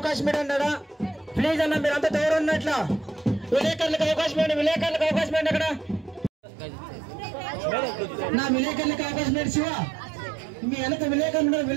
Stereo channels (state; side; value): drops out; left; at 6.3 s